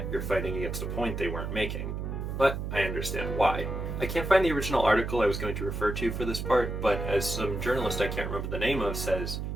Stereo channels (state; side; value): noise; right; hum, 4 dB below the sound